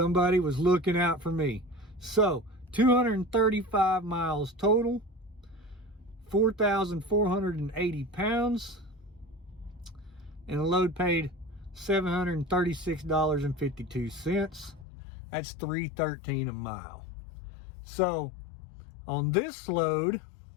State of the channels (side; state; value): right; drops out; at 14.9 s